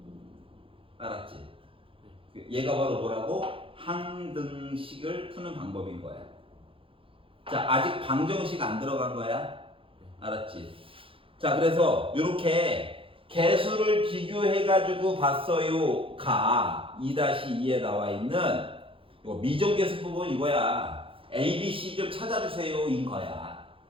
알았지? 얘가 바로 뭐라고? 항등식을 푸는 방법인 거야. 자, 아직 방정식 안 들어간 거야? 알았지? 자, 그래서 이렇게 개수를 비교해가지고 봤어요. 가 2-2에 나와 있는 이거 미정계수 부분 이거야. A, B, C 좀 찾아주세요. 인 거야.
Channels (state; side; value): late; left; 0.26 ms